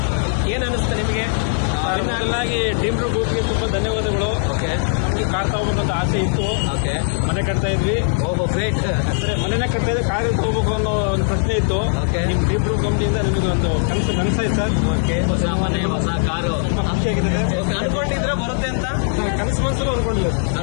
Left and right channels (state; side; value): silent; right; digital silence